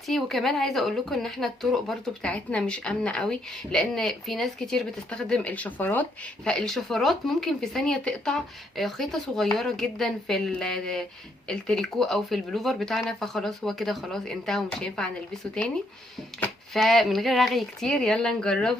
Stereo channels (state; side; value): normal; both; correlation 0.72